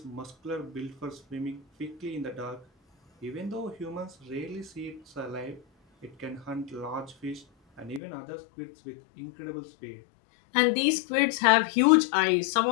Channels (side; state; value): right; drops out; at 8.0 s